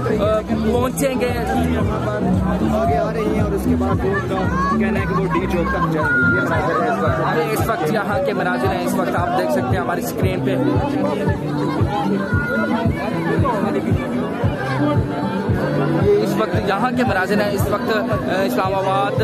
पहुँचेंगे, आगे आ रही हैं और उसके बाद उनका कहना है कि वो डी चौक तक जाएंगे। इस वक्त यहाँ के मनाजिर हैं, इस वक्त आप देख सकते हैं हमारी स्क्रीन पे। इस वक्त यहाँ के मनाजिर हैं, इस वक्त इस्लामाबाद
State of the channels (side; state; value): both; identical; correlation 1.00